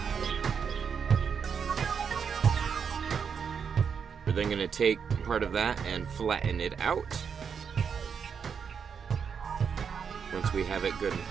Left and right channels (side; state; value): left; quieter; 6.7 dB